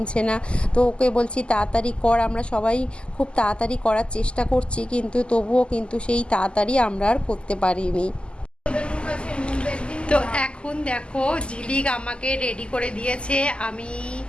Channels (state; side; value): late; right; 0.051 ms